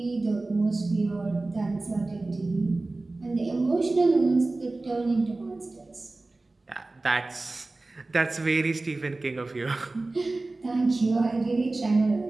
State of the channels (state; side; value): quieter; left; 3.1 dB